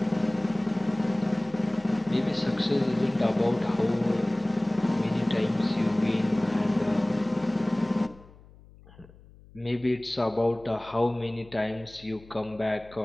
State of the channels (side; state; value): left; noise; hum, 23 dB below the sound